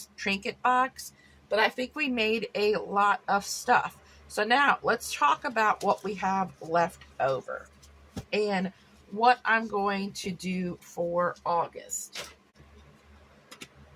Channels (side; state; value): both; identical; correlation 1.00